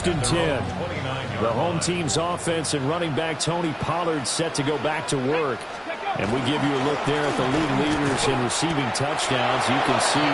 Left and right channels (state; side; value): identical; both; correlation 1.00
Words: and 10. The home team's offense and running back Tony Pollard set to go back to work. And we give you a look there at the league leaders in receiving touchdowns. You can see